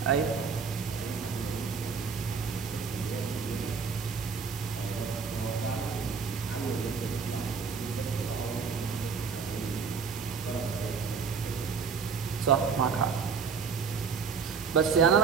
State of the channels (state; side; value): quieter; left; 5.7 dB